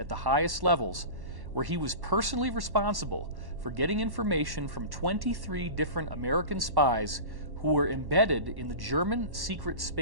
the highest levels, where he was personally responsible for getting information from 23 different American spies who were embedded in the German secret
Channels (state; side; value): late; left; 1.1 ms